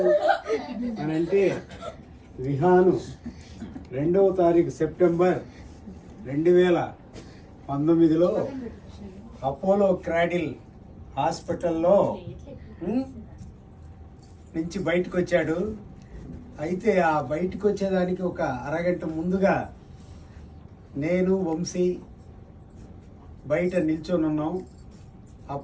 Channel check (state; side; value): identical; both; correlation 1.00